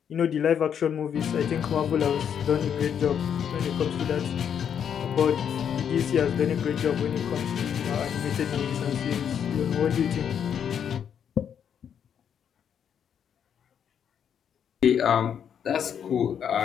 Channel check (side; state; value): right; quieter; 8.3 dB